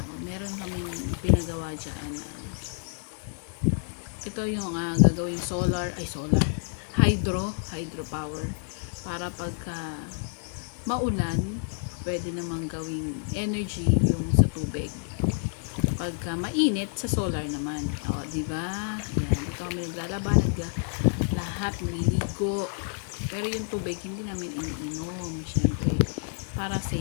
Meron kaming pinagawa dyan na ito yung gagawing hydro power para pagka maulan pwede namang gawing energy yung sa tubig pagka mainit sa solar naman, di ba? Yan, dito kami naglalaba, lahat maliligo, pero yung tubig hindi namin iniinom, syempre para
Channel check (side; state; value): right; silent; 59 dB below the other